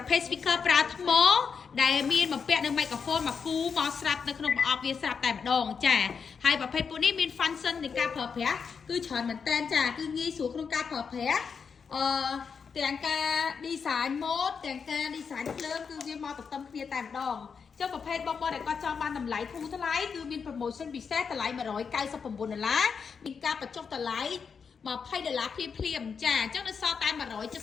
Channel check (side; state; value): right; quieter; 6.0 dB